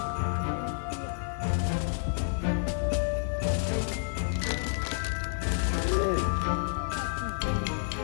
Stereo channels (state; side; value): silent; right; digital silence